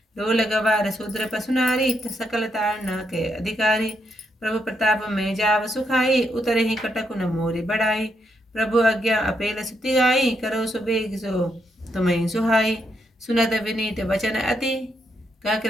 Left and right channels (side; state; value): both; normal; correlation 0.79